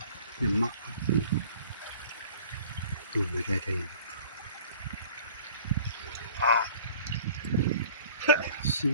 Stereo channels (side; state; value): both; inverted; correlation -0.49